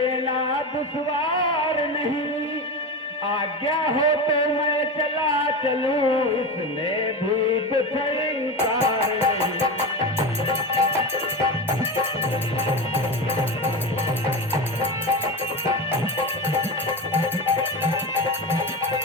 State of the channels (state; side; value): normal; both; correlation 0.22